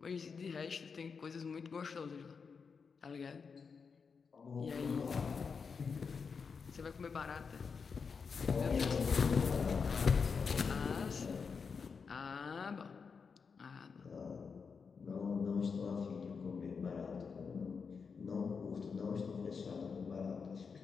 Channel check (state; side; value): quieter; right; 5.6 dB